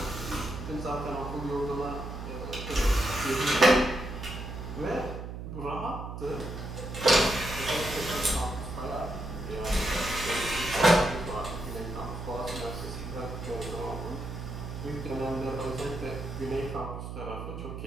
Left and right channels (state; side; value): noise; right; hum, 7 dB below the sound